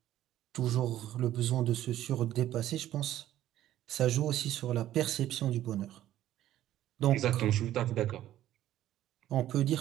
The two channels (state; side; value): quieter; left; 13.1 dB